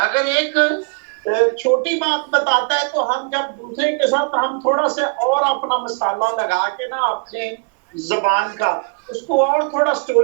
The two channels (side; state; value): left; quieter; 37.3 dB